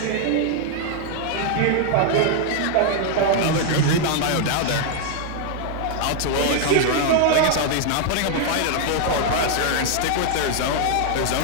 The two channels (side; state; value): both; different; correlation 0.00